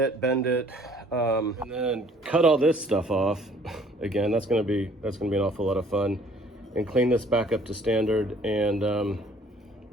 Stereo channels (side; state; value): both; normal; correlation 0.57